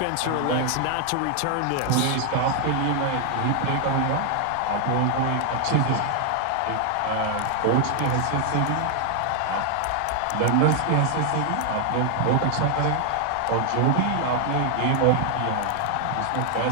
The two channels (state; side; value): different; both; correlation 0.00